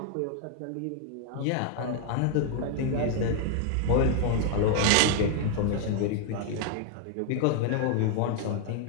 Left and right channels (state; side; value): different; both; correlation 0.00